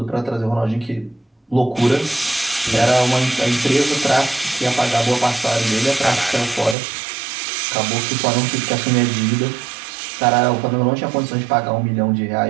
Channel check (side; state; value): left; drops out; at 6.8 s